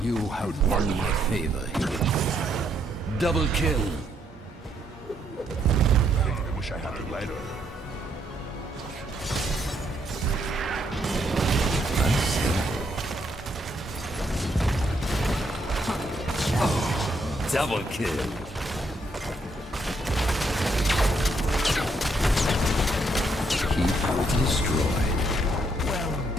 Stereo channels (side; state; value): both; normal; correlation 0.74